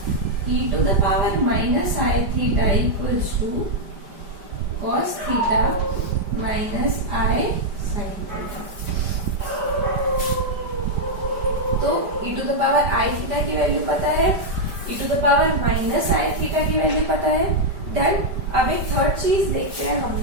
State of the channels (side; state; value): left; late; 5.1 ms